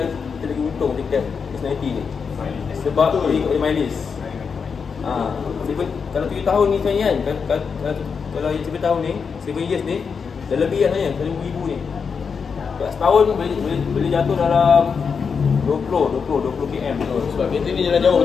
lagi untung dekat S90 ni. Sebab boleh ikut mileage. Kalau 7 tahun ni sebenarnya kan, kalau yang 7 tahun ni, 7 years ni dah lebih lah sebenarnya 1,000 ni. Setahun boleh jatuh dalam 20 km. Sebab kereta ni jalan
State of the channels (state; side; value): quieter; right; 5.9 dB